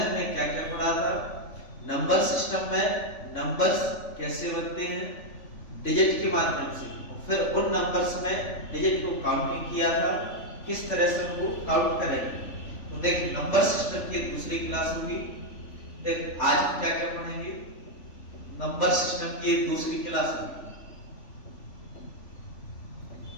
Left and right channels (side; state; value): right; late; 3.5 ms